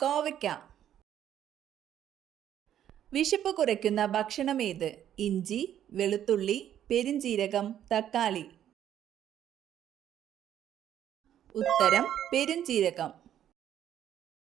കോവയ്ക്ക. വിശപ്പ് കുറയ്ക്കുന്ന ഭക്ഷണം ഏത്? ഇഞ്ചി, വെളുത്തുള്ളി, പെരുംജീരകം, തക്കാളി. ഉത്തരം പെരുംജീരകം.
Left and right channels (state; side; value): quieter; left; 10.7 dB